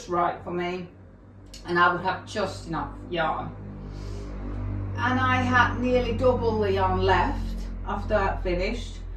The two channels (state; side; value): identical; both; correlation 1.00